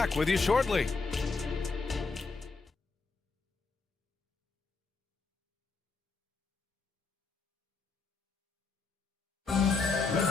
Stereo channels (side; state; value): right; quieter; 4.3 dB